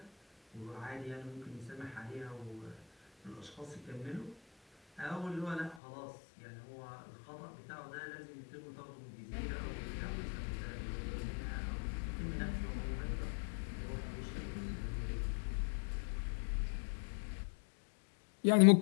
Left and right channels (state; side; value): drops out; right; at 5.8 s